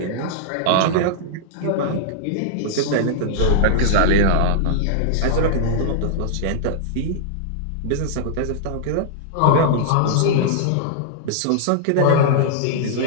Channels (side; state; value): both; different; correlation -0.01